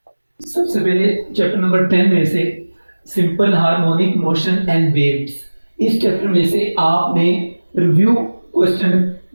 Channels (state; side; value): inverted; both; correlation -1.00